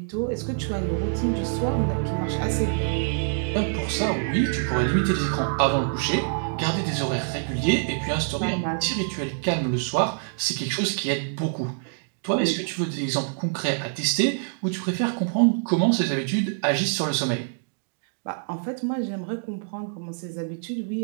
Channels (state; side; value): silent; left; digital silence